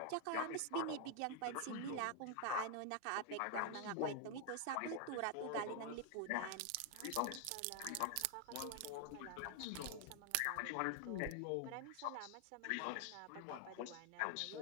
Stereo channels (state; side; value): different; both; correlation 0.00